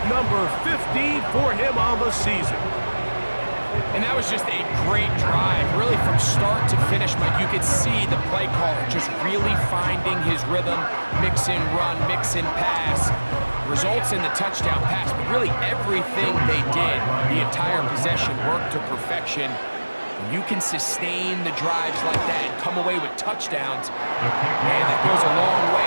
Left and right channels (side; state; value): both; inverted; correlation -1.00